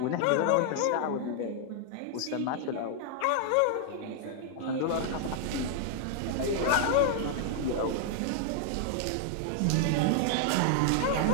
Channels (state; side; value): different; both; correlation -0.01